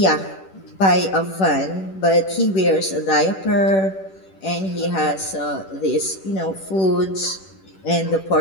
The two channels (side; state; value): right; late; 10 ms